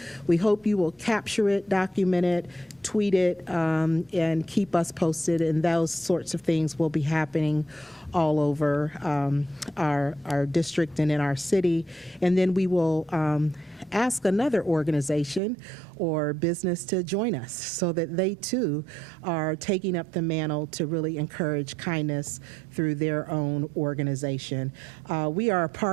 we hope you will capture it, document it, tweet it, and keep us posted, and those sorts of things will be happening all over our district and in our city. And then we will ask another organization or business to join us so that they too are taking up the mantle to really encourage kindness through their own organization. We are a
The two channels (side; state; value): left; drops out; at 15.4 s